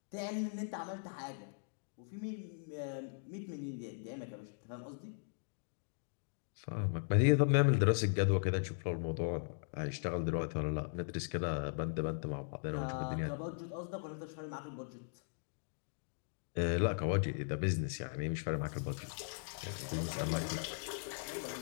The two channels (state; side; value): silent; right; digital silence